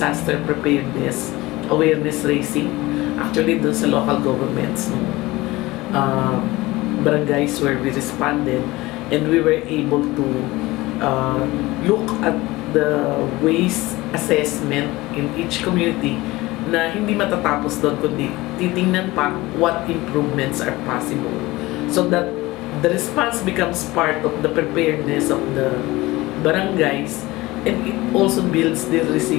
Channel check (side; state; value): right; quieter; 19.9 dB